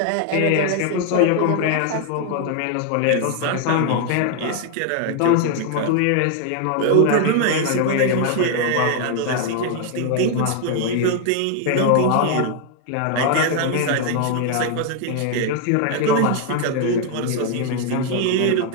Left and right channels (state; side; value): different; both; correlation 0.00